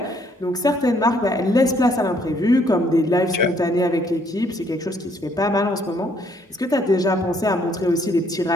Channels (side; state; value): both; normal; correlation 0.67